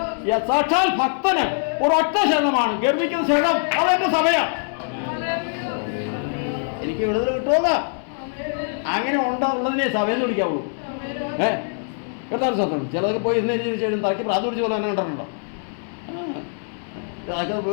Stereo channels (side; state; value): right; silent; 57 dB below the other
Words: സാക്ഷാൽ ഭക്തന് ഒരൊറ്റ ശരണമാണ്, ഗർഭിക്കുന്ന ശരണം. അതെന്റെ സഭയാണ്. എനിക്ക് വിടുതൽ കിട്ടുമെന്ന് അങ്ങനെ ഉള്ളതിനെ സഭയെന്ന് വിളിക്കാവുള്ളൂ. കേട്ടാൽ സത്യം. ചിലതൊക്കെ പോയി ഇന്ന് ശേഷം തലയ്ക്ക് പ്രാർത്ഥന പിടിച്ച പോലെ തന്നെ കണ്ടിട്ടുണ്ടോ? അതൊക്കെ